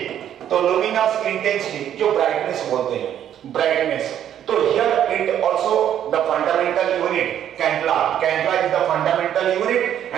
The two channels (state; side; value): quieter; left; 10.3 dB